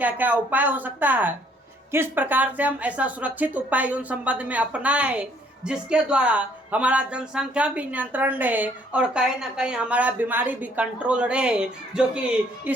क्या उपाय हो सकता है, किस प्रकार से हम ऐसा सुरक्षित उपाय यौन संबंध में अपनाएं जिसके द्वारा हमारा जनसंख्या भी नियंत्रण रहे और कहीं ना कहीं हमारा बीमारी भी कंट्रोल रहे, जो कि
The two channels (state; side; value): normal; both; correlation 0.64